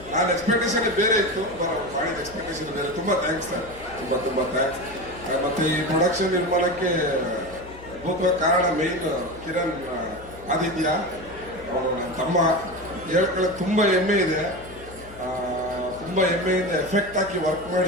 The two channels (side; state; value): left; noise; hum, 19 dB below the sound